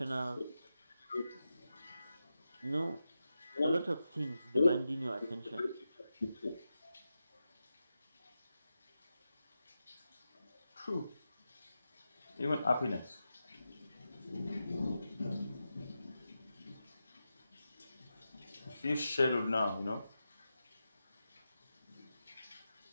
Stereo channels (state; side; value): inverted; both; correlation -0.90